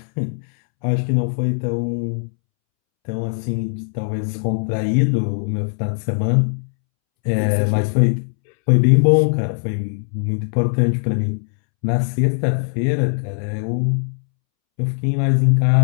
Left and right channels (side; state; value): right; silent; 66 dB below the other